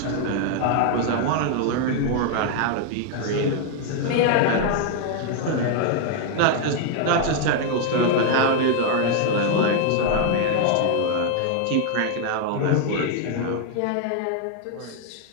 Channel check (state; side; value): different; both; correlation 0.00